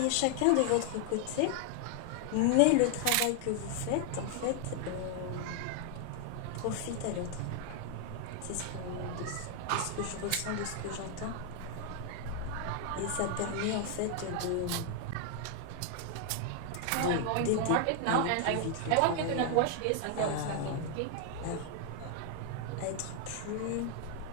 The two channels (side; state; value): both; different; correlation 0.00